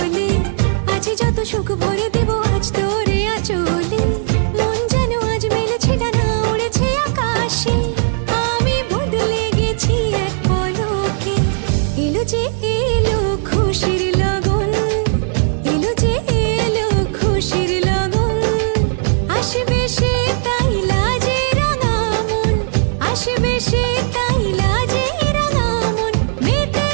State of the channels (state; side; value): silent; left; digital silence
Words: আজ যত সুখ ভরে দেব আজ তোরে আঁচলে মন যেন আজ মেলেছে ডানা উড়েছে আকাশে আমি বদলে গেছি এক পলকে এলো যে এলো খুশির লগন এলো যে এলো খুশির লগন আসবে সে তাই লাজে রাঙা মন আসবে সে তাই লাজে রাঙা মন